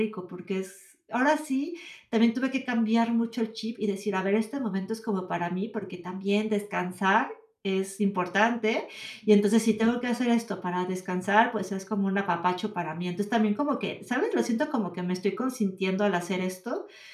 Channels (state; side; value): identical; both; correlation 1.00